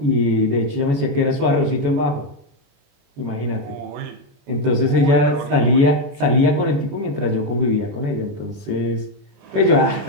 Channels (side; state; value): left; late; 21 ms